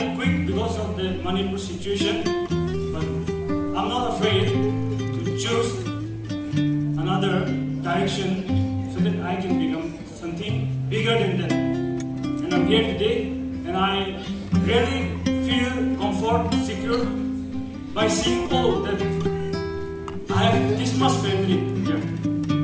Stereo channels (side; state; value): both; identical; correlation 1.00